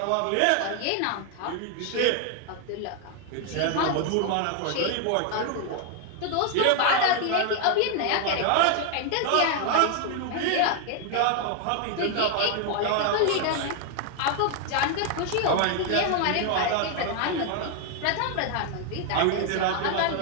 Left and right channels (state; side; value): different; both; correlation 0.00